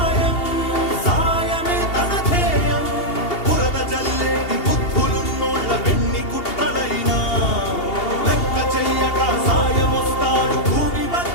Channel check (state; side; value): late; right; 2.8 ms